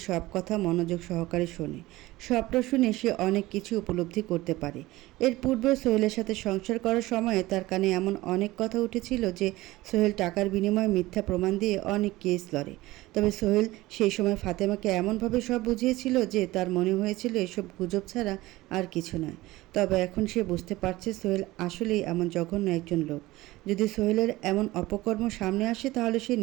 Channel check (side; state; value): left; quieter; 18.6 dB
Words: সব কথা মনোযোগ সহকারে শোনে। সবটা শুনে সে অনেক কিছু উপলব্ধি করতে পারে। এর পূর্বেও সোহেলের সাথে সংসার করার সময়ে তার কানে এমন অনেক কথা উঠেছিল যে সোহেল টাকার বিনিময়ে মিথ্যা প্রমাণ দিয়ে অনেক কেস লড়ে। তবে সোহেল সেই সময় ফাতেমাকে এমনভাবে সব বুঝিয়েছিল যে তার মনে হয়েছিল এসব গুজব ছাড়া আর কিছু নয়। তবে এখন সে বুঝতে পারছে সোহেল আসলেই এমন জঘন্য একজন লোক। যদি সোহেলের এমন অপকর্ম সামনে আসে তাহলে সে